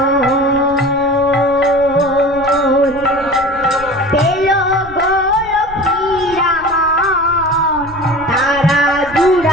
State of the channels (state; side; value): noise; right; rumble, 17 dB below the sound